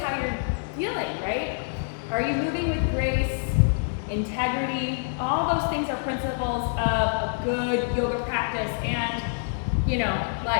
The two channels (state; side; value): silent; right; digital silence